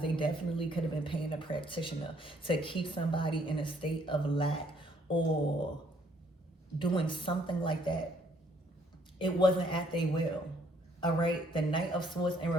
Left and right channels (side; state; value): both; normal; correlation 0.65